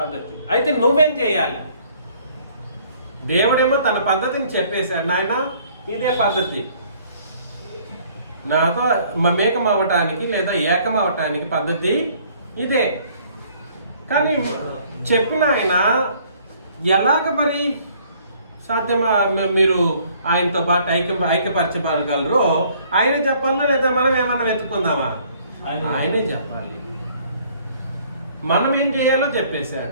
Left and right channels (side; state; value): both; inverted; correlation -0.60